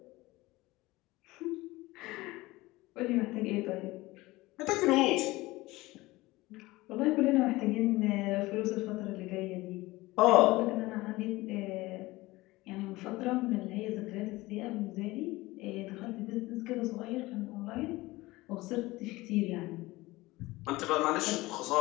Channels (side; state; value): right; quieter; 19.9 dB